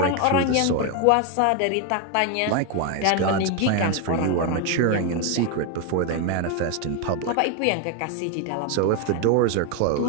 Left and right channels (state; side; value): different; both; correlation 0.01